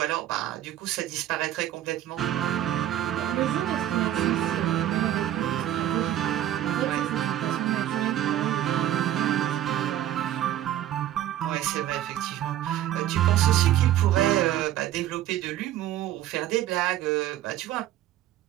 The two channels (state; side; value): quieter; left; 12.5 dB